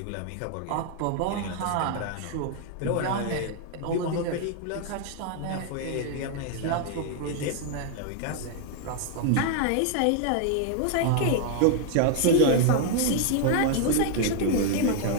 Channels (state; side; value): different; both; correlation 0.00